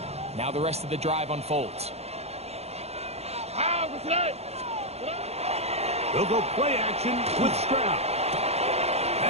Now the rest of the drive unfolds. They'll go play action with Stroud.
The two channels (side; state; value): left; late; 0.31 ms